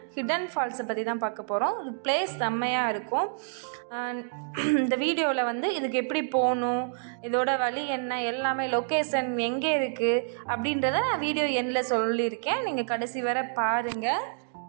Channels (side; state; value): left; silent; digital silence